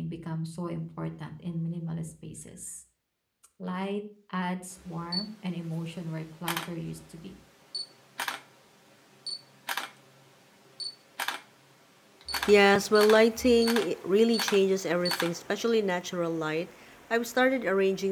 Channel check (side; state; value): both; identical; correlation 1.00